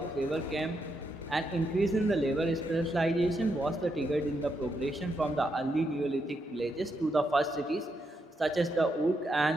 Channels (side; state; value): both; normal; correlation 0.81